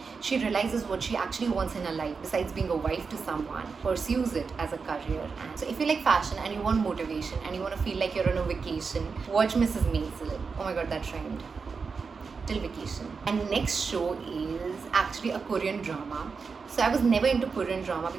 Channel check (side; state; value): left; quieter; 5.1 dB